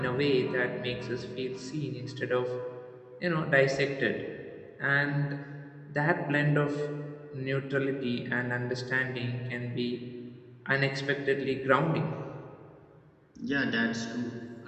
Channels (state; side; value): identical; both; correlation 1.00